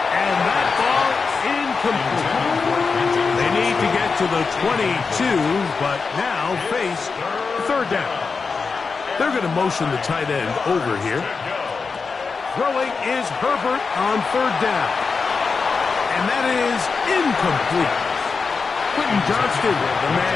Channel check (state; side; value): quieter; right; 4.8 dB